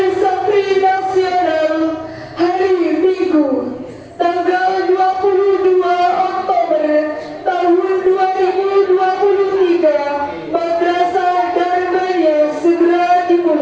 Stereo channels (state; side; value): identical; both; correlation 1.00